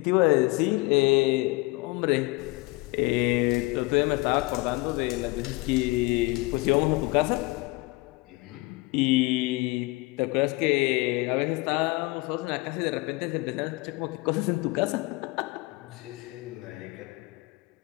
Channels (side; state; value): right; quieter; 23.7 dB